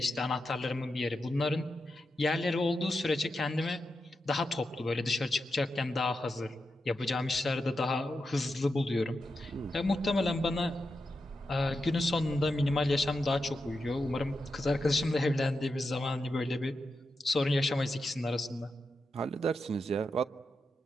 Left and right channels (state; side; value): normal; both; correlation 0.88